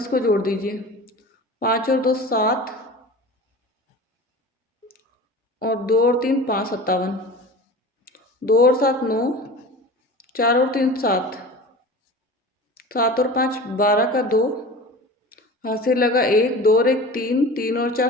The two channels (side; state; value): both; normal; correlation 0.36